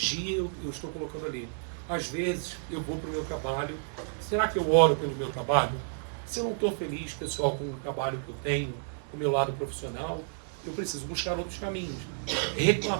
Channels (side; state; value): left; silent; digital silence